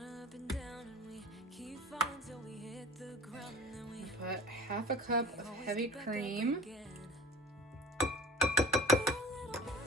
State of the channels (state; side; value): normal; both; correlation 0.40